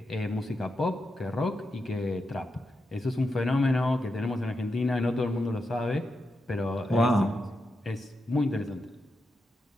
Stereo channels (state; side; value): normal; both; correlation 0.86